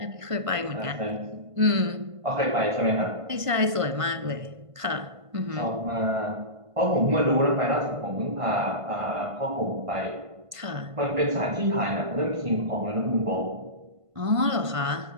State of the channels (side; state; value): left; late; 1.5 ms